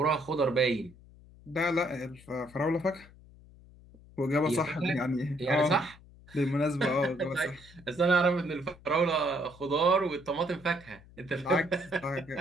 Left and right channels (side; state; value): left; noise; hum, 23 dB below the sound